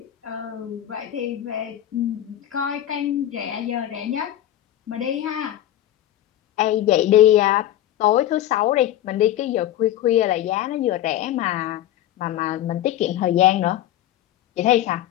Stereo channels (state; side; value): quieter; right; 12.7 dB